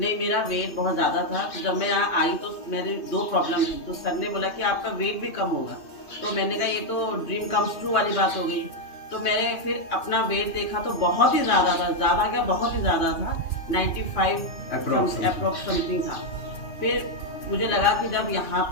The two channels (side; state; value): right; late; 2.9 ms